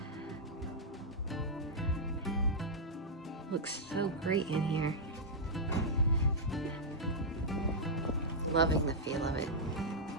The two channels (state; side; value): normal; both; correlation -0.07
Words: Looks so great in here. Loving the feel of it.